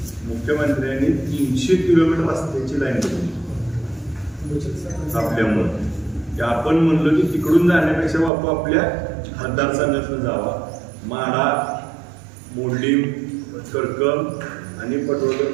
मुख्यमंत्र्यांनी 300 किलोमीटर रस्त्याची लाईन बनवली आपल्यामुळे. आपण म्हणलो की तिकडून जाण्यापेक्षा बापू आपल्या मतदारसंघातून जावा, माडा, मोडलीम, करकम आणि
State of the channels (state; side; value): drops out; left; at 8.3 s